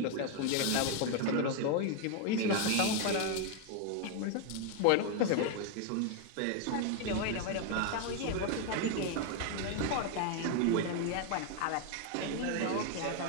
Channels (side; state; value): both; different; correlation 0.01